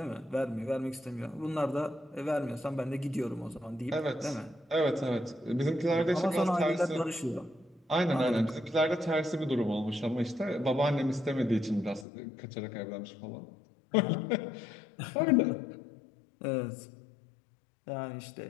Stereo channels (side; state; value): right; drops out; at 12.1 s